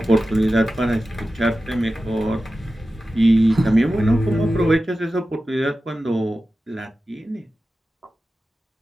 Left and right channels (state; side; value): normal; both; correlation 0.94